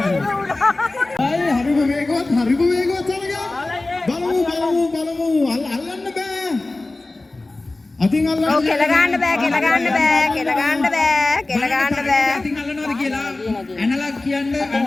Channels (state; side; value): quieter; right; 3.0 dB